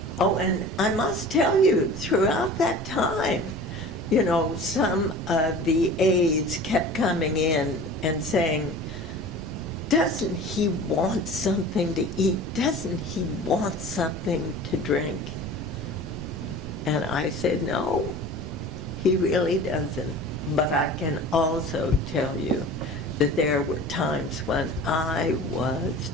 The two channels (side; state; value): right; noise; rumble, 13 dB below the sound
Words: oh, and I must tell you, throughout that time, you know, some of the aides kept coming in and saying, doesn't he want something to eat? Doesn't he want something to drink? And I said, no, he really doesn't. But I can also tell you that there were times when I was